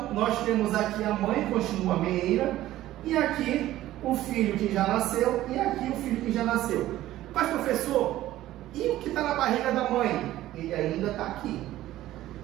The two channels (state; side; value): quieter; left; 14.7 dB